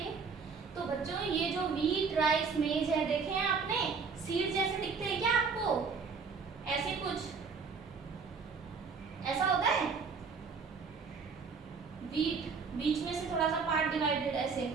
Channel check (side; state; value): left; quieter; 5.3 dB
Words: तो बच्चों ये जो व्हीट, राइस, मेज है, देखे हैं आपने, सीड जैसे दिखते हैं क्या आपको, ऐसे कुछ ऐसा होता है। व्हीट बीच में से थोड़ा सा पार्ट डिवाइडेड ऐसे